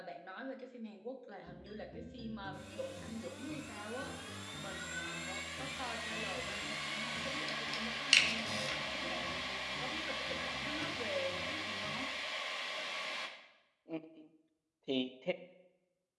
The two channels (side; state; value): both; identical; correlation 1.00